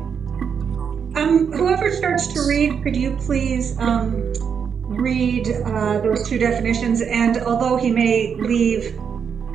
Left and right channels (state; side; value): quieter; left; 7.0 dB